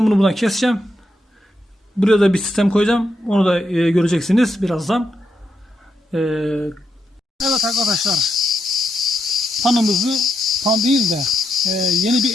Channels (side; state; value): both; normal; correlation 0.82